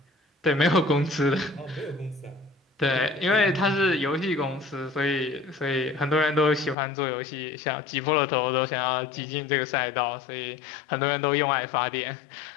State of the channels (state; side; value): drops out; right; at 6.8 s